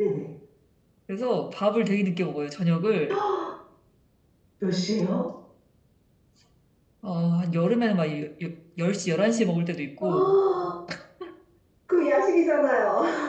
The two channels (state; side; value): identical; both; correlation 1.00